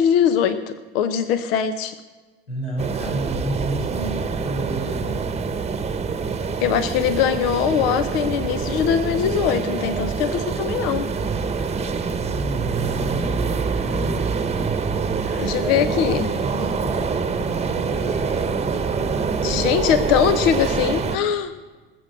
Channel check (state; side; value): normal; both; correlation 0.32